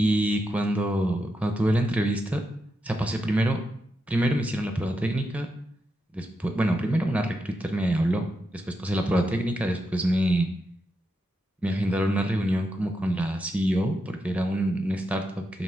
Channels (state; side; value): normal; both; correlation 0.85